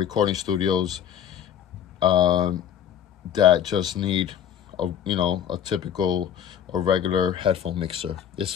studios that just need a typical or regular headphone mixer.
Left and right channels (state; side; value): quieter; right; 9.5 dB